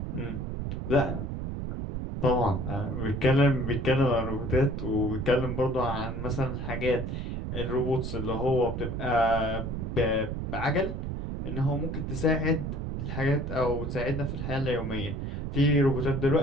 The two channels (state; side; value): noise; right; rumble, 4 dB below the sound